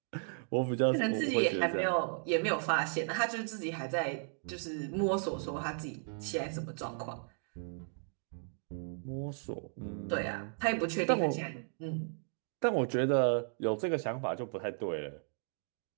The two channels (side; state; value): left; silent; 54 dB below the other